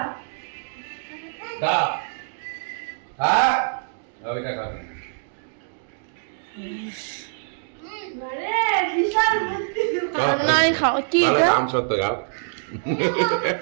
খা হ্যাঁ ওইটা খাবি মানে বিশাল বুদ্ধি নাই খাও কি এটা? দাম সত্য খাও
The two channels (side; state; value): left; silent; digital silence